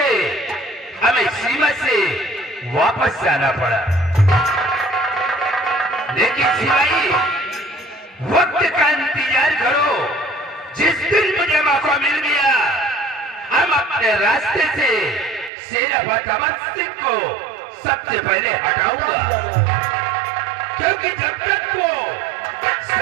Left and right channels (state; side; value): drops out; left; at 15.5 s